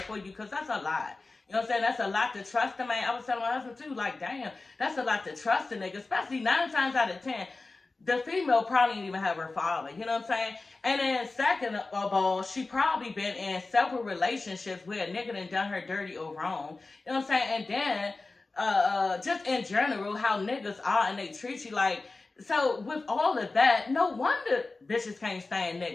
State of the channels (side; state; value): right; quieter; 3.5 dB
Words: for you, because that's a lot. You know what I'm saying? That's a lot to trust a man. I was telling my husband too, like, damn, that's a lot to trust a nigga, especially 9 times out of 10. The female probably didn't even have her father, you know what I'm saying? And then second of all, she probably been in several relationships where a nigga done her dirty or wrong, you know what I'm saying? And then, just in general, how niggas are and they treat you like, so with all of that, no wonder bitches can't stand